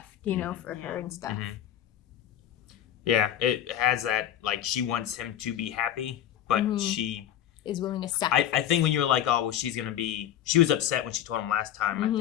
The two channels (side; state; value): right; quieter; 11.0 dB